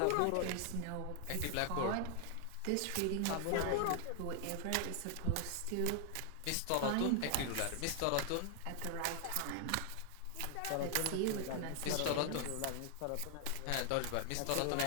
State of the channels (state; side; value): different; both; correlation 0.00